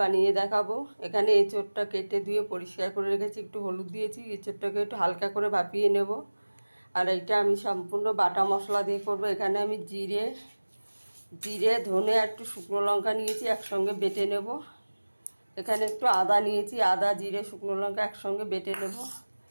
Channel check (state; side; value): inverted; both; correlation -1.00